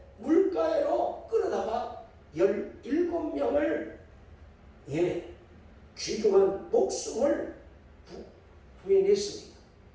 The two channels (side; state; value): both; identical; correlation 1.00